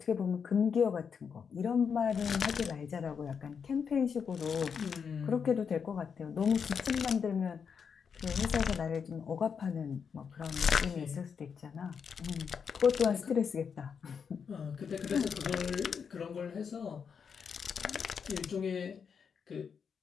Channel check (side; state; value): right; quieter; 6.5 dB